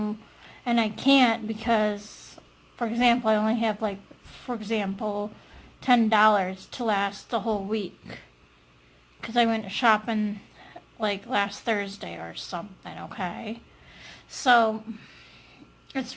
can't because, for example, I only have like, for example, $10 to last the whole week, because I went shopping like last Thursday or something, okay? So it's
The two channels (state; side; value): identical; both; correlation 1.00